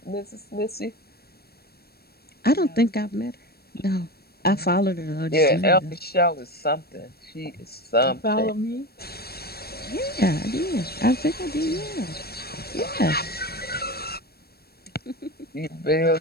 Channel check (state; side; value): late; right; 0.46 ms